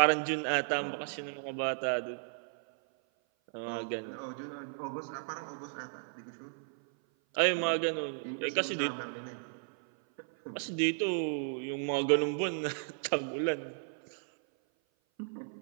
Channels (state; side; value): silent; left; 55 dB below the other